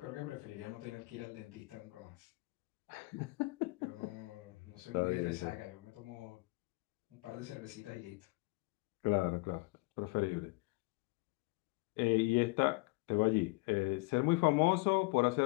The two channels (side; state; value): right; quieter; 25.3 dB